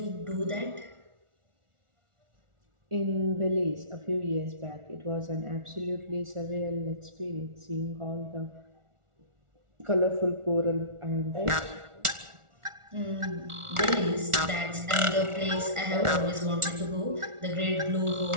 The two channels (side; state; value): left; late; 1.4 ms